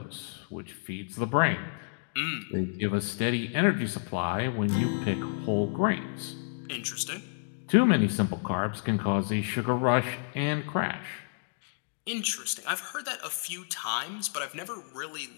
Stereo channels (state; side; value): silent; right; digital silence